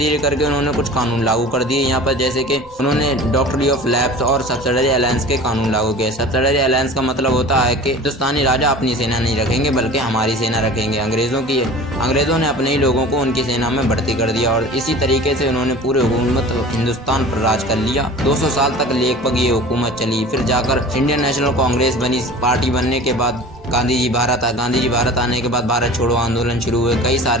करके उन्होंने कुछ कानून लागू कर दिए यहाँ पर, जैसे कि उन्होंने डॉक्ट्री ऑफ लैप्स और सब्सिडरी अलायंस के कानून लागू किए। सब्सिडरी अलायंस का मतलब होता है कि हिंदुस्तानी राजा अपनी सेना नहीं रखेंगे बल्कि हमारी सेना रखेंगे। अंग्रेजों ने अपने ही लोगों को उनकी सेना में भर्ती कर दिया, और इसी तरीके से उन्होंने पूरे हुकूमत हिंदुस्तान पर राज कर लिया। 200 साल तक लगभग ये हुकूमत चली। फिर जाकर इंडियन नेशनल कांग्रेस बनी। पार्टी बनने के बाद गांधी जी भारत आने के बाद भारत छोड़ो आंदोलन शुरू हुए, कई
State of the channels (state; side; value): noise; right; rumble, 25 dB below the sound